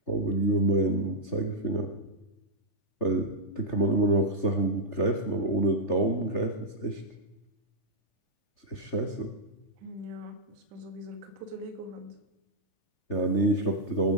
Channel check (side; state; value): right; late; 3.3 ms